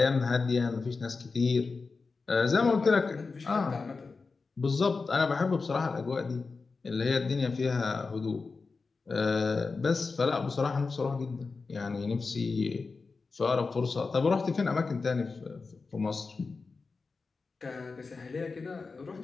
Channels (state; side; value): quieter; right; 4.3 dB